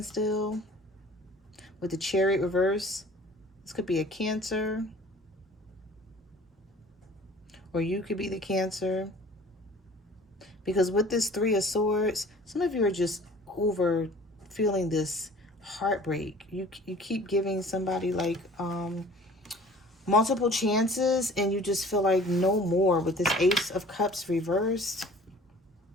With the Chariot reverse, this could be a Cancer. Or you could be the Cancer. Because with this Three of Swords, some of you are just over feeling this heartbreak. You keep giving somebody like multiple chances, and you just feel like no more with this Ace of Cups reversed.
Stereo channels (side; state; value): both; normal; correlation 0.48